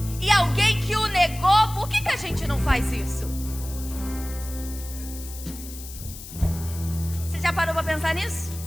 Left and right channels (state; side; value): noise; left; hiss, 13 dB below the sound